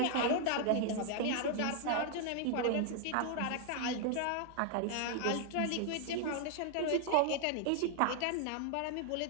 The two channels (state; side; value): different; both; correlation 0.00